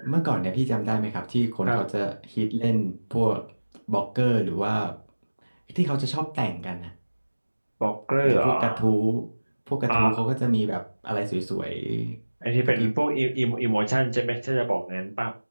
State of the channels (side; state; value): both; inverted; correlation -1.00